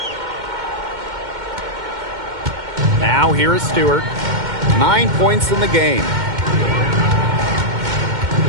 Now here is Stewart. 9 points in the game.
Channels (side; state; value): left; late; 2.1 ms